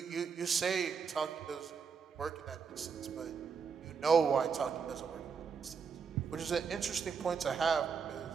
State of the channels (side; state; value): left; quieter; 6.0 dB